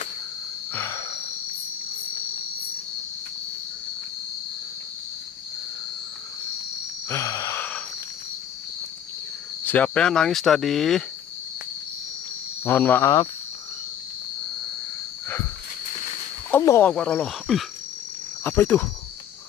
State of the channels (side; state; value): right; quieter; 9.7 dB